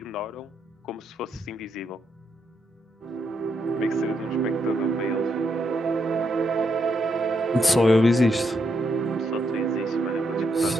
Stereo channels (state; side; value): normal; both; correlation 0.79